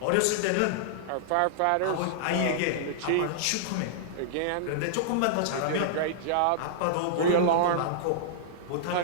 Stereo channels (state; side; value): different; both; correlation -0.02